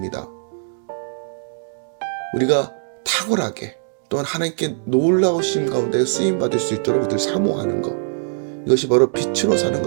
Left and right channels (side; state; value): left; silent; digital silence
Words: 우리가 탁월하게 또한 하나님께 놀라우심 가운데 쓰임받을 수 있도록 늘 사모하는 것, 이것이 바로 빛으로 사는